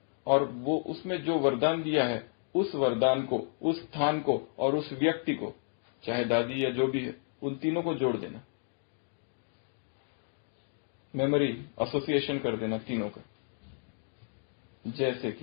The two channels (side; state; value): right; silent; digital silence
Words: और वो उसमें जो वरदान दिया है उस वरदान को, उस स्थान को और उस व्यक्ति को, चाहे दादी या जो भी है, उन तीनों को जोड़ देना, मेमोरी एसोसिएशन कर देना तीनों का। जैसे